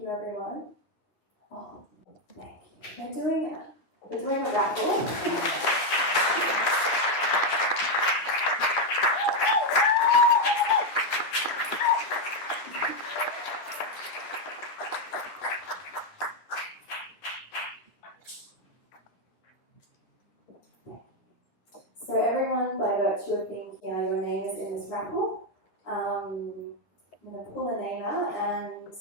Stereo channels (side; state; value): right; late; 9.7 ms